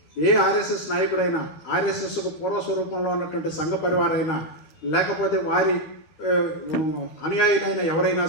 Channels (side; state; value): right; late; 13 ms